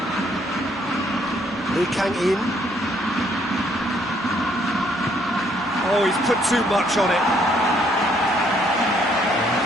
Lee Kang-in. Oh, he's put too much on it. And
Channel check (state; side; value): normal; both; correlation 0.68